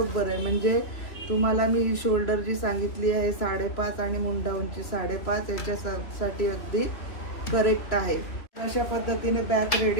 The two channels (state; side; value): late; right; 3.1 ms